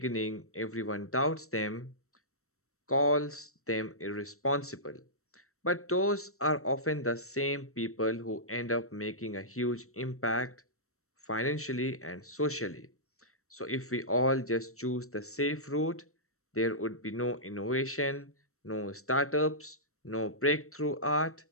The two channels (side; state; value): right; late; 0.63 ms